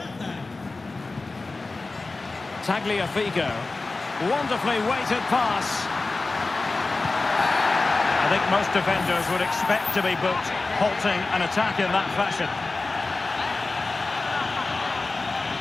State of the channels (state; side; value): quieter; right; 3.5 dB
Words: Tagliafico. Wonderfully weighted pass. I think most defenders would expect to be booked, halting an attack in that fashion.